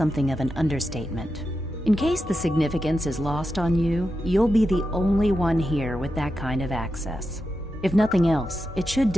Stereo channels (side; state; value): both; normal; correlation 0.89